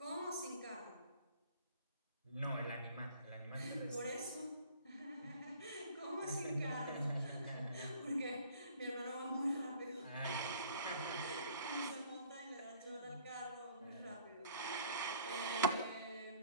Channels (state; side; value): inverted; both; correlation -0.54